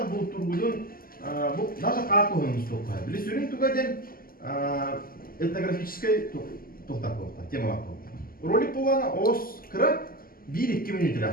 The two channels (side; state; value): right; late; 0.42 ms